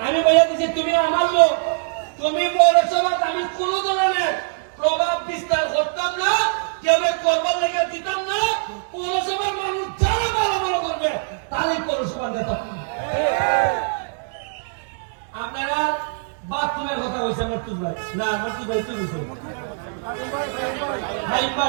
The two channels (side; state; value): left; silent; digital silence